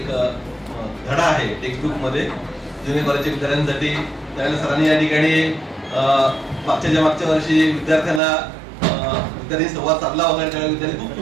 धडा आहे टेक्स्टबुक मध्ये जुनियर कॉलेजच्या विद्यार्थ्यांसाठी. त्यावेळेला सरांनी या ठिकाणी मागच्या वर्षी विद्यार्थी संवाद साधला होता. त्यावेळेला विद्यार्थी खूप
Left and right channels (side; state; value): left; drops out; at 8.2 s